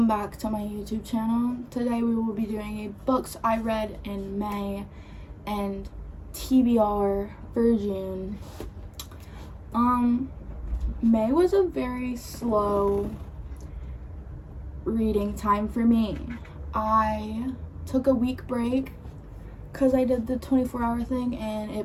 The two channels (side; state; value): both; identical; correlation 1.00